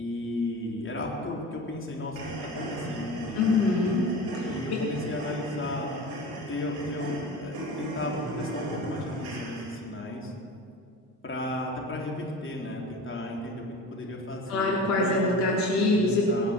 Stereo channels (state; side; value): normal; both; correlation 0.34